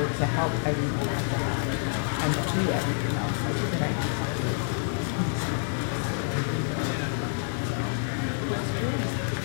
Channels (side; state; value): right; silent; digital silence